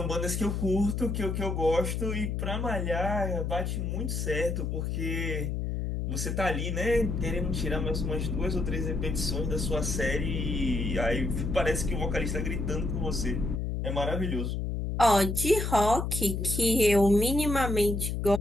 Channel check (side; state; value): left; noise; hum, 1 dB below the sound